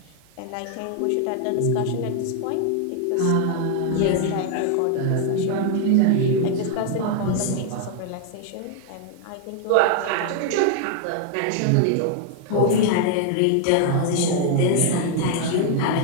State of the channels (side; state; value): both; different; correlation 0.00